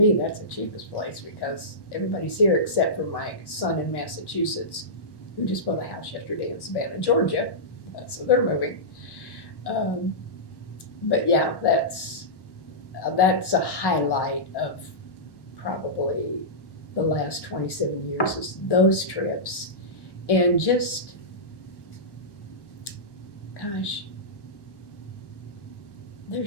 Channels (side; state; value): right; late; 1.1 ms